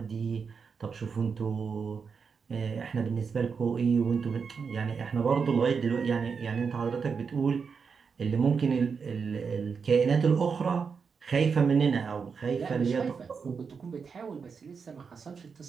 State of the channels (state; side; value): quieter; left; 5.7 dB